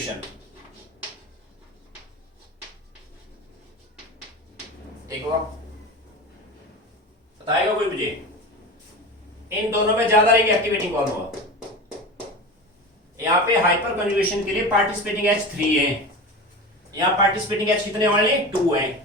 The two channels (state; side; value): normal; both; correlation 0.29